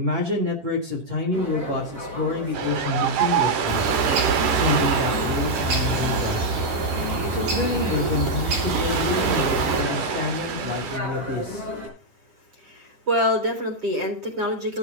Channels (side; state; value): left; late; 10 ms